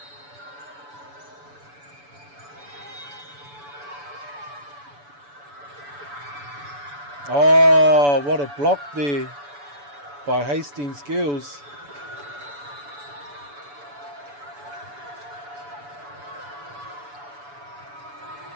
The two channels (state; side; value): late; left; 7.0 ms